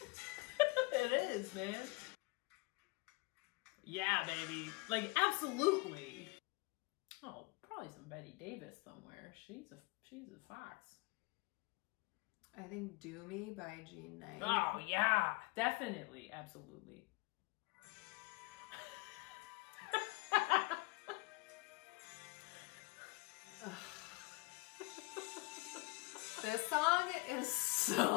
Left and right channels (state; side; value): quieter; right; 25.6 dB